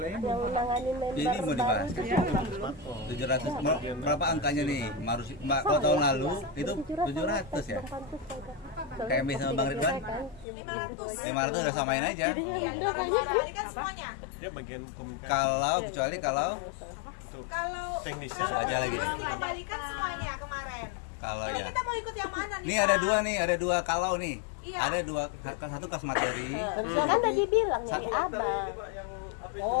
yang nanganin member Ini mau dibahas. baru. 700 berapa angkanya nih? Kalau tahun lalu itu 700 ya. Kayak Emi sama Bang Ridwan. 500 udah samain aja. Iya, balikan semuanya. Dia bagian komunikasi. Kecuali kalau Kalau Teknisnya aja lagi nih. kalau nggak balikan semuanya kemarin. Kalau Jadi ya. kita mau ikut yang mana nih? Nih Kak? ada dua kalau nih. Iya. Ada dua, satu kas materi. Kan udah dibilang nyari abang.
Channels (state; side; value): drops out; right; at 10.5 s